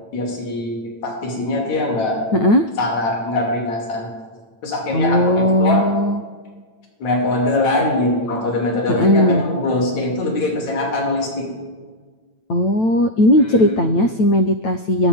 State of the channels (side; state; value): right; late; 9.1 ms